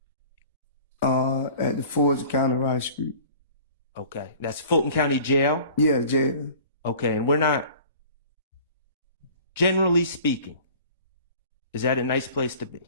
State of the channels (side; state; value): both; inverted; correlation -0.46